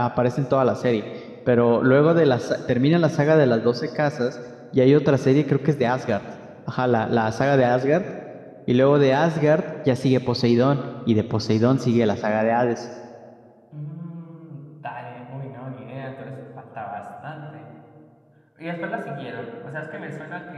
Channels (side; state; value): both; identical; correlation 1.00